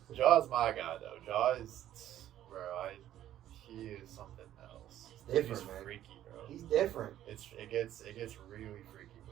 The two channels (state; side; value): quieter; left; 12.2 dB